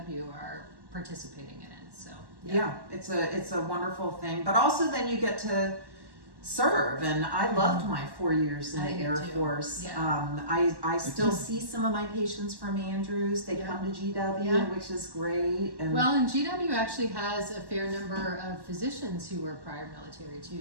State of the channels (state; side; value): late; left; 1.1 ms